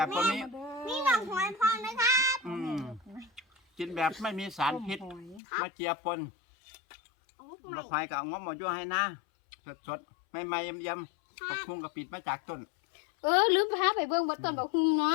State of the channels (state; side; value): drops out; right; at 5.4 s